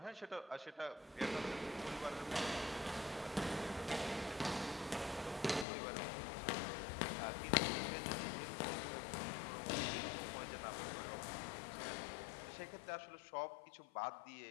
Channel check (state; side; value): drops out; right; at 5.7 s